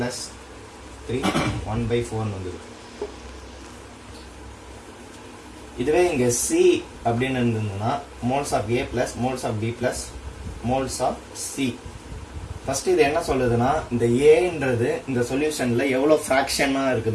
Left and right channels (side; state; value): both; identical; correlation 1.00